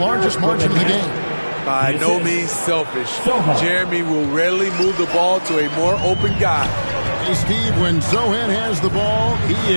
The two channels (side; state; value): both; inverted; correlation -1.00